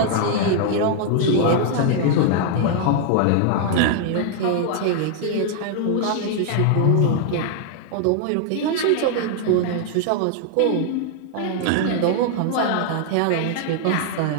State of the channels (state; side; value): different; both; correlation 0.00